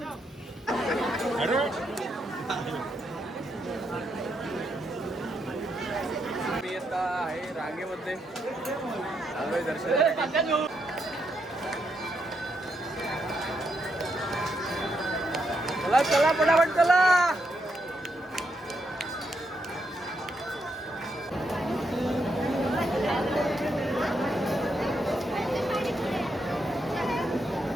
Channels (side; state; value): both; normal; correlation 0.80